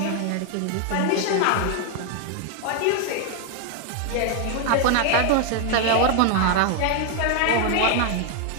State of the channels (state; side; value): different; both; correlation 0.00